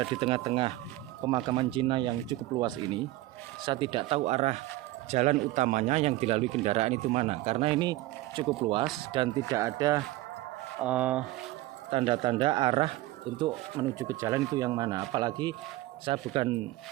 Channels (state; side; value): quieter; left; 17.4 dB